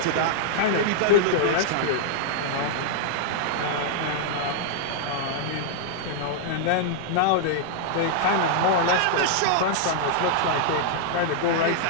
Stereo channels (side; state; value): both; different; correlation -0.01